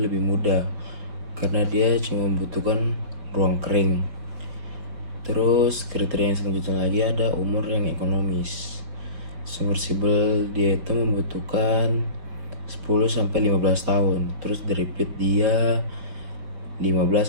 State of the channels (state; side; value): late; left; 4.7 ms